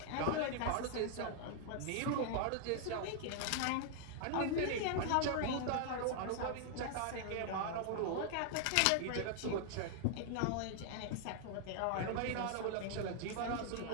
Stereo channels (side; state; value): both; different; correlation 0.00